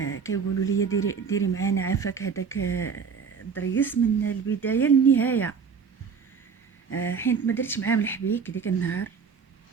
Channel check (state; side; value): quieter; left; 6.1 dB